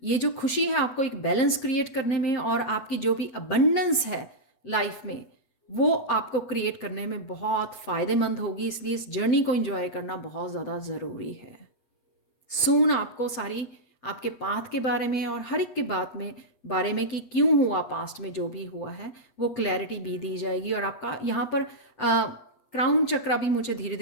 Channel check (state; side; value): late; right; 8.1 ms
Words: ये जो खुशी है आपको एक बैलेंस क्रिएट करने में, और आपकी जो भी अबंडेंस है लाइफ में, वो आपको क्रिएट करने में बहुत फ़ायदेमंद होगी। इसलिए इस जर्नी को इंजॉय करना बहुत ज़्यादा ज़रूरी है। सून आपको सारी आपके पाथ के बारे में और हर एक के बारे में कि क्यों हुआ, पास्ट में जो भी हुआ है वो क्लैरिटी भी दी जाएगी। और आपका यहाँ पर क्राउन चक्रा भी मुझे धीरे